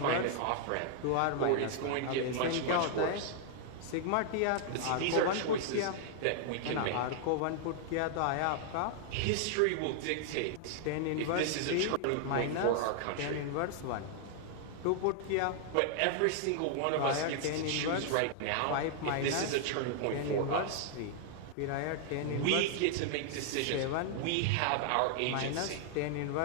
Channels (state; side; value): different; both; correlation -0.01